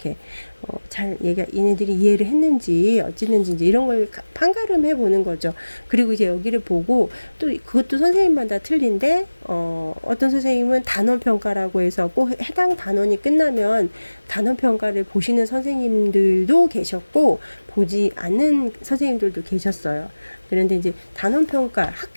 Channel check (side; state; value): both; inverted; correlation -1.00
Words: 잘 얘네들이 이해를 했는지 어찌는지 이제 이런 걸 판가름해 보는 거죠. 그리고 이제 여기를 보고 또 그것도 선생님마다 틀린데 어떤 선생님은 단원 평가라고 해서 꼭 해당 단원이 끝나면 단원 평가를 보시는 선생님들도 계셨고 보지 않는 선생님들도 계셨어요. 그런데 이제 단원평가,